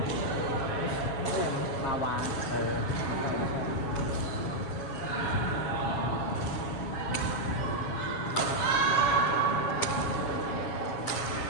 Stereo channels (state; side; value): late; right; 7.2 ms